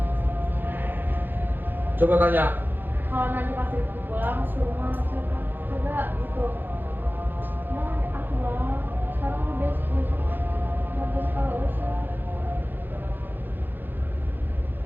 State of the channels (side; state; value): left; late; 0.093 ms